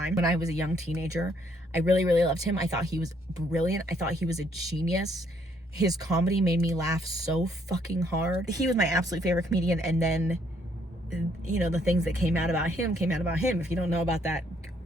When I was a young teenager, I really, really loved him. I thought he was brilliant. I thought he was a genius. His comedy made me laugh so fucking hard. He was my absolute favorite comedian. And then, you know, the things that came out about him. If you don't know about that,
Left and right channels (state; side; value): normal; both; correlation 0.69